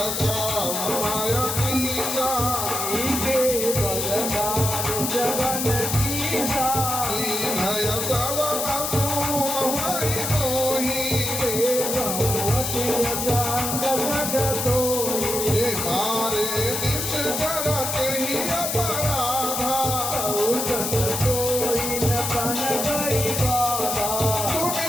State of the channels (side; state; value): left; noise; hiss, 2 dB below the sound